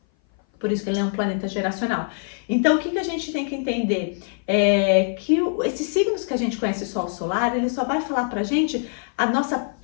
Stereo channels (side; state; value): right; silent; 57 dB below the other